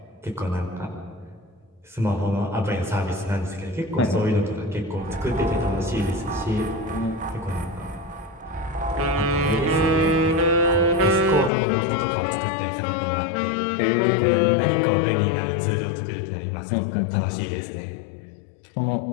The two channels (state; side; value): drops out; right; at 11.5 s